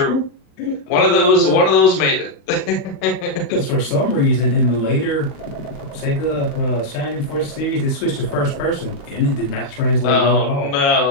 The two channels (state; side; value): late; right; 35 ms